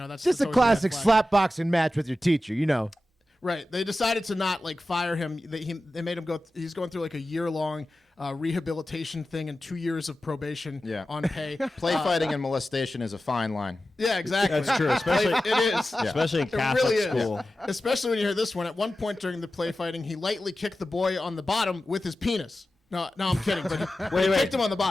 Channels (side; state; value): both; normal; correlation 0.94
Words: That's Just a always red classic flag. slapboxing match with your teacher, Right. They decided to not fire him. They made him go. He's going through a year-long rehabilitation thing and 2 years of probation Yeah. on pay. Play fighting and molestation is a fine line. Yeah, exactly. That's true, especially- it is. Especially in It Catholic really is. school. Especially when you hear this one. At one point during the play fighting, he lightly kicked the boy on the bottom with his penis. No, I'm kidding. But he kicked him on the